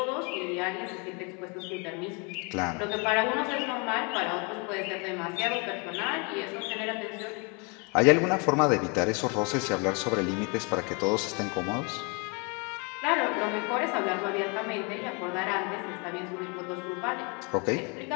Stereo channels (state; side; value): quieter; right; 32.4 dB